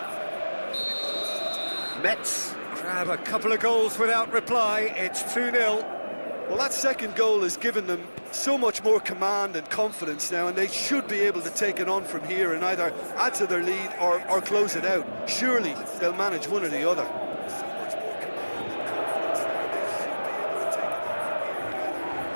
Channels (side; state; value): both; inverted; correlation -1.00